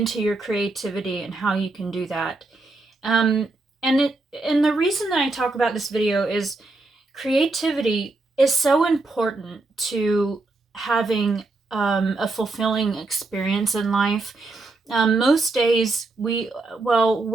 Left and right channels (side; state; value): left; quieter; 3.3 dB